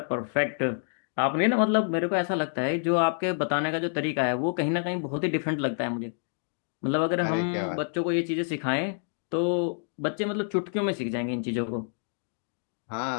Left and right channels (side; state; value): right; silent; digital silence